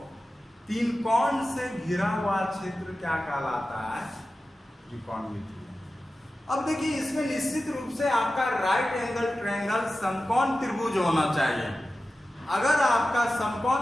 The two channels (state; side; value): normal; both; correlation 0.94